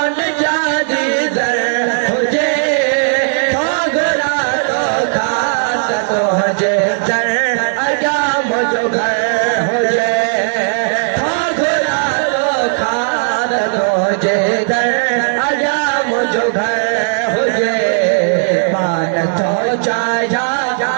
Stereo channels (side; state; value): left; silent; 70 dB below the other